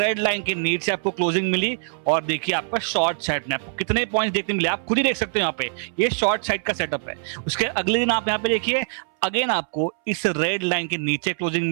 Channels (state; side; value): silent; left; 63 dB below the other